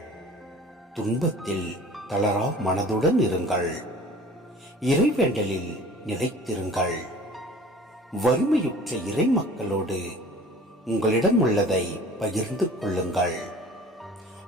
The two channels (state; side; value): normal; both; correlation 0.46